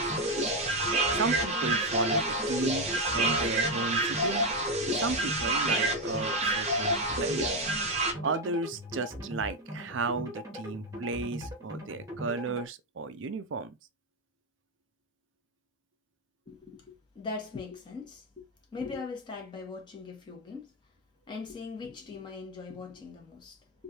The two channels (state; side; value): normal; both; correlation 0.07